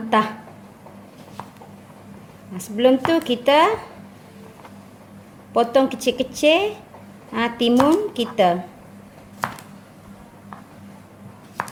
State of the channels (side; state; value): both; identical; correlation 1.00